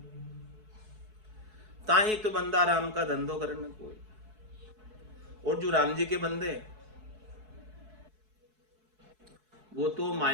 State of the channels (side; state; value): left; late; 4.7 ms